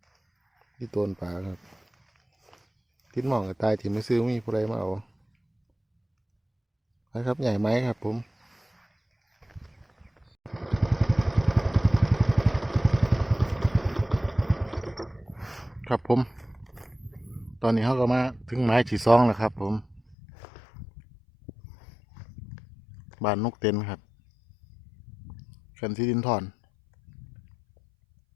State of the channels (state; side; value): drops out; right; at 20.2 s